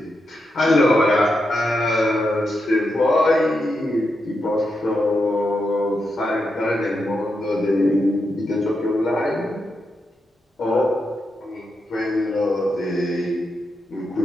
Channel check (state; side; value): normal; both; correlation 0.85